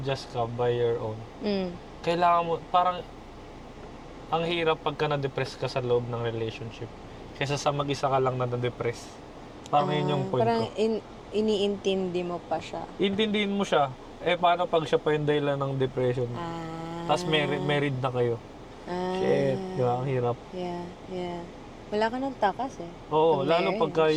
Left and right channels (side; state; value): both; identical; correlation 1.00